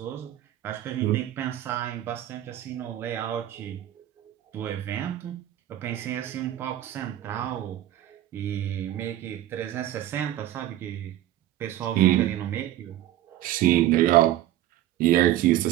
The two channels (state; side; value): quieter; left; 13.5 dB